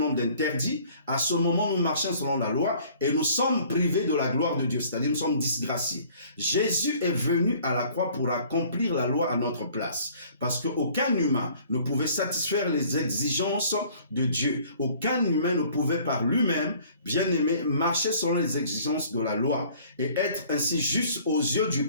d'interdits, à ce moment nous marchons selon la loi et nous sommes privés de la gloire de Dieu, c'est-à-dire nous sommes disgraciés. Jésus est venu à la croix pour accomplir la loi à notre place, parce qu'aucun humain ne pouvait satisfaire les exigences de Dieu. Aucun humain ne pouvait par lui-même, bien aimé, marcher selon les exigences de la loi et être ainsi juste aux yeux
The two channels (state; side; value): inverted; both; correlation -0.55